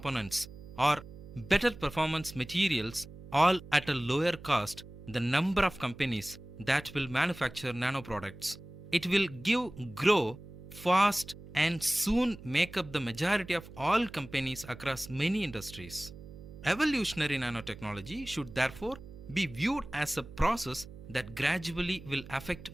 or better performance materials, all at a lower cost, the number of companies that will manufacture nanoproducts, it will grow fast and soon make up the majority of all companies across many industries. Evolutionary nanotechnology should therefore be viewed as a process that gradually will affect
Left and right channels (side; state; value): right; noise; hum, 16 dB below the sound